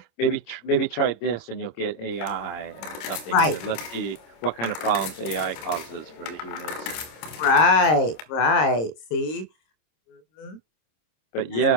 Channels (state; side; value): late; right; 26 ms